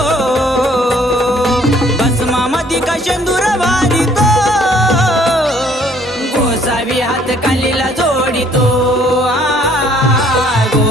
भस्मामधी का शेंदूर भारी तो गोसावी हात कालीला जोडितो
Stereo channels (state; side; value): normal; both; correlation 0.61